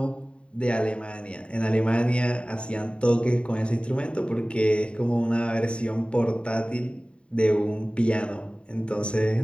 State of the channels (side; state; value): right; late; 0.055 ms